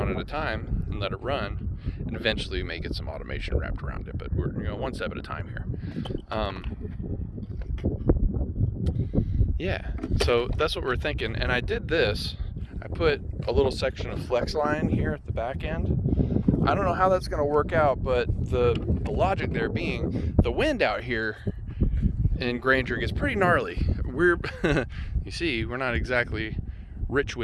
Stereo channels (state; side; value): identical; both; correlation 1.00